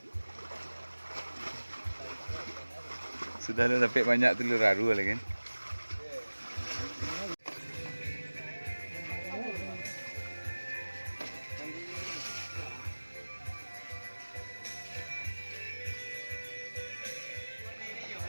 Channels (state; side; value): inverted; both; correlation -1.00